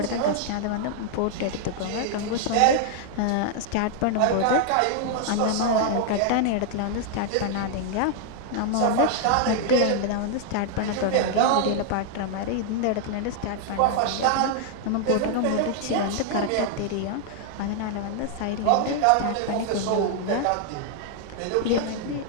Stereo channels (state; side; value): different; both; correlation 0.00